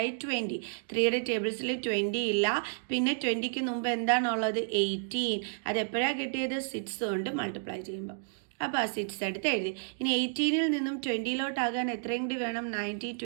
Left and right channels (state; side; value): silent; left; digital silence